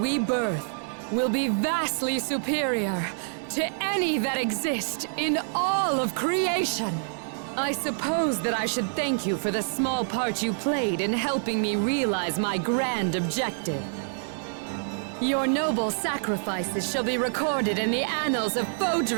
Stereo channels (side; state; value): left; silent; 60 dB below the other